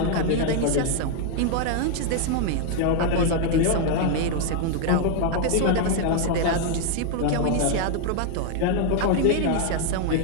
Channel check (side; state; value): both; different; correlation 0.00